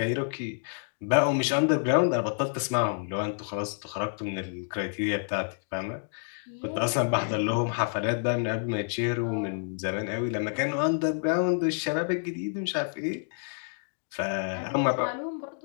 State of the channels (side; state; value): right; silent; digital silence